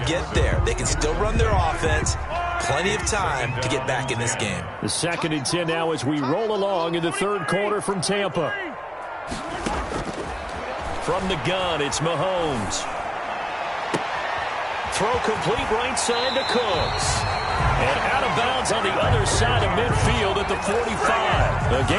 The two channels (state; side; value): identical; both; correlation 1.00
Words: there. They can still run their offense. Plenty of time to get back in this game. The 2nd and 10 now as we roll along in the third quarter from Tampa. From the gun, it's Mahomes. Throw complete right side to Cooks. And out of bounds on the other side of midfield at the 45. A